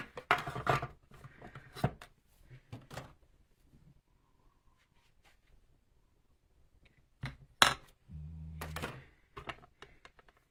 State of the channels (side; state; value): both; identical; correlation 1.00